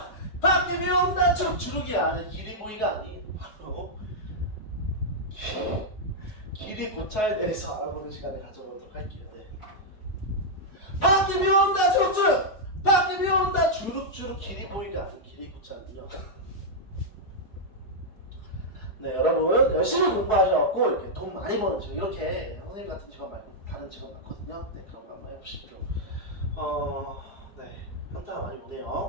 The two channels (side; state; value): right; late; 4.7 ms